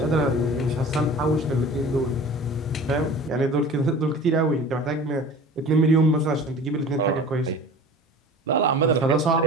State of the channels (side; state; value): both; normal; correlation 0.40